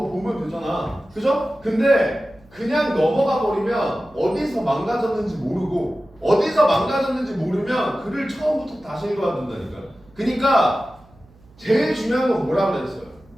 보면 되잖아. 그죠? 근데 그냥 넘어가 버리면 어디서 망가졌는지 모르고 어디서 망가졌는지 모르면 글을 처음부터 다시 읽어야 된다니까. 그러니까 제일 중요한 건 뭐라 그랬어요?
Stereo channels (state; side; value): noise; right; hum, 28 dB below the sound